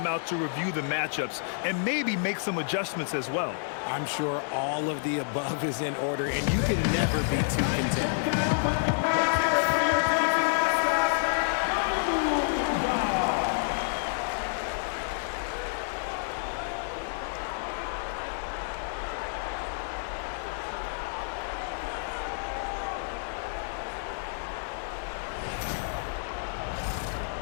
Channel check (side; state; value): right; silent; 58 dB below the other